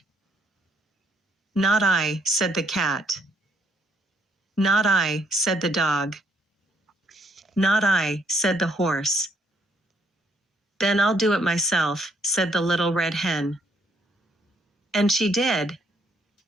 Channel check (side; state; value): both; normal; correlation 0.69